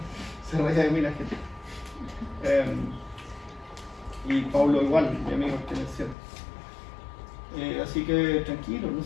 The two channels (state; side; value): drops out; right; at 6.2 s